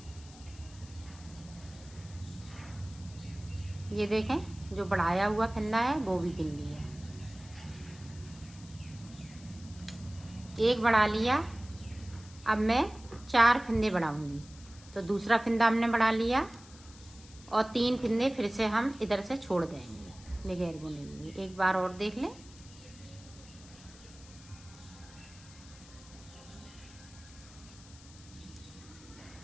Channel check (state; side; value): noise; left; hiss, 21 dB below the sound